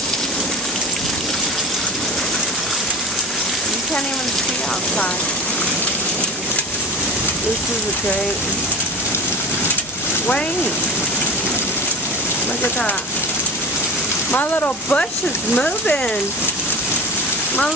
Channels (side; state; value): both; normal; correlation 0.32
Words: Can't even see outside. This is a great. Wait. Look at that. My little bush is moving. My